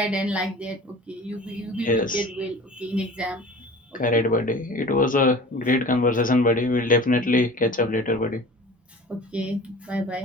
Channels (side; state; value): both; normal; correlation 0.41